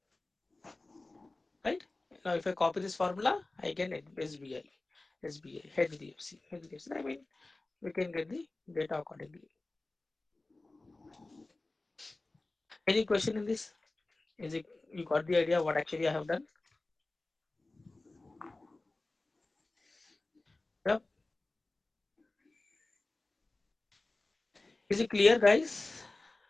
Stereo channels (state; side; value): quieter; right; 3.1 dB